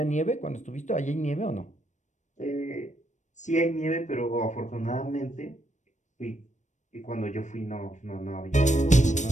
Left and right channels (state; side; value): late; right; 0.35 ms